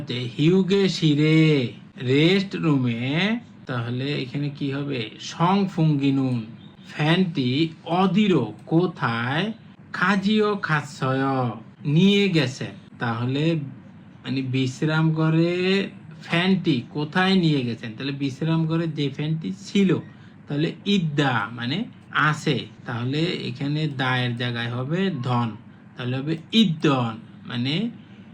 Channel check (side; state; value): both; identical; correlation 1.00